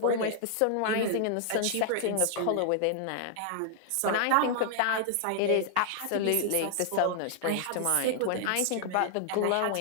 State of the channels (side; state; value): both; different; correlation -0.01